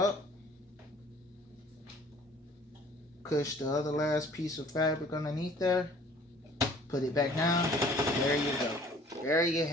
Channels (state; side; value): normal; both; correlation 0.52